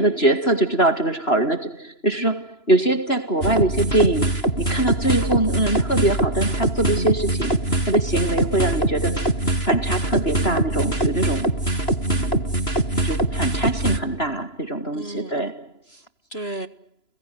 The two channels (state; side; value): late; right; 3.0 ms